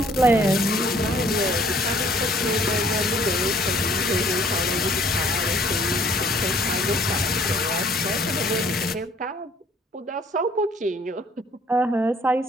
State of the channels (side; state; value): both; normal; correlation 0.59